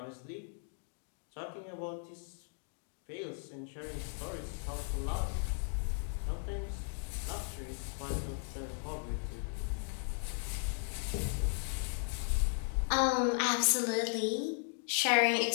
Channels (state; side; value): silent; right; 53 dB below the other